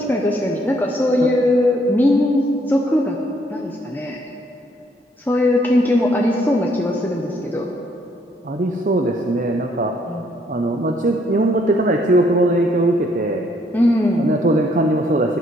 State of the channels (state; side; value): normal; both; correlation 0.68